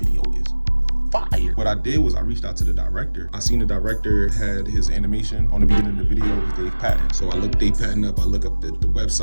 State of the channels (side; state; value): both; inverted; correlation -1.00